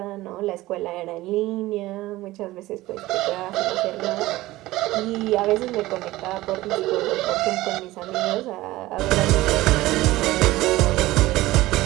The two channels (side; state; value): left; quieter; 17.7 dB